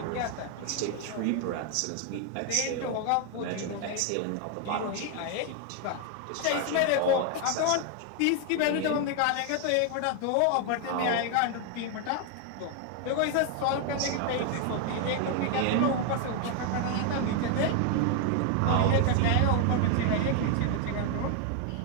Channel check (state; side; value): different; both; correlation 0.00